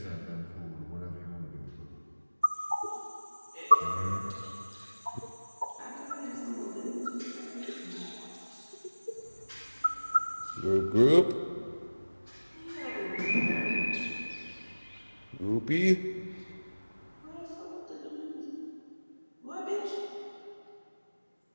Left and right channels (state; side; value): inverted; both; correlation -1.00